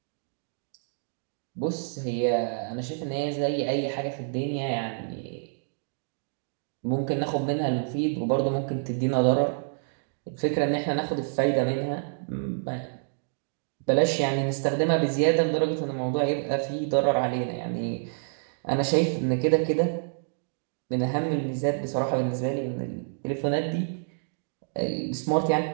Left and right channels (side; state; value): left; silent; digital silence